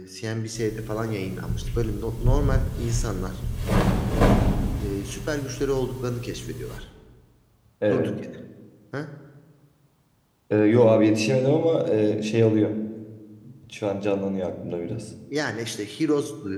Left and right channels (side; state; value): both; identical; correlation 1.00